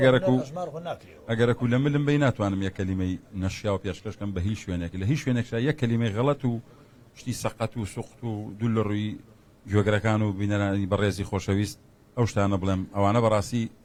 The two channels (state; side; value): identical; both; correlation 1.00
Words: ژمار خۆ ناکرێەوە ئەگەرەکو لە ملم بی ناتوانم یەک کەلیمەی نەشیا و پێشکەشکەم بە هیچ شوێنێک لە هیچ شوێنێکشا یەک کەلیمەی غەڵەت و شتی سەقەت و سوخت و دوو لە ڕووی گوێگرەکان و بینەرانی بەڕێزی خۆشەویست ئەو شتانە بڵێم ئەوانە بەڕاستی